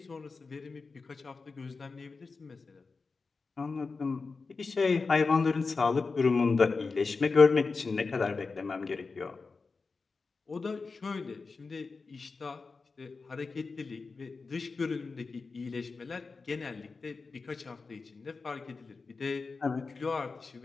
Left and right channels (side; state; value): right; quieter; 4.3 dB